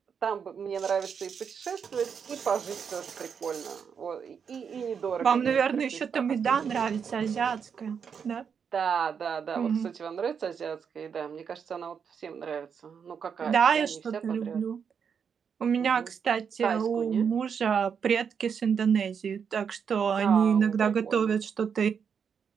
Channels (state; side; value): quieter; left; 6.8 dB